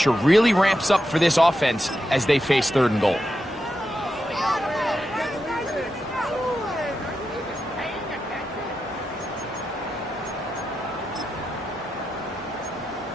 really ramps up for this offense as they face third and goal.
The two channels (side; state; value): both; normal; correlation 0.88